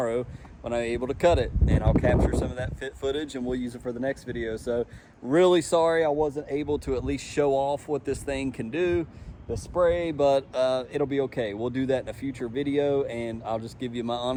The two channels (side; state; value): both; identical; correlation 1.00